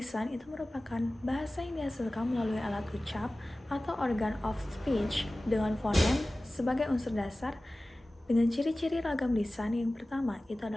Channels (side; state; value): both; normal; correlation 0.97